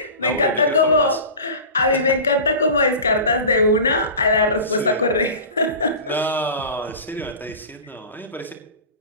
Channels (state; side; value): inverted; both; correlation -0.34